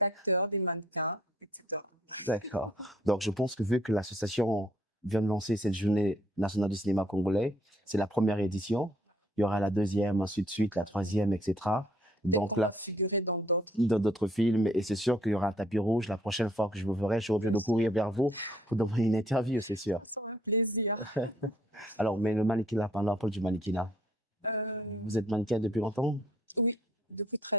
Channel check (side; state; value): both; normal; correlation 0.63